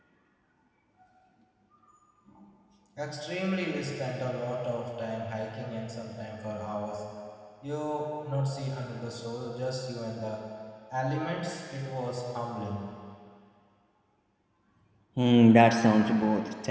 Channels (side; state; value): both; identical; correlation 1.00